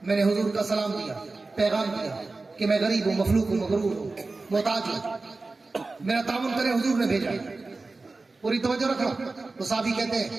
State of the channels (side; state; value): left; quieter; 3.6 dB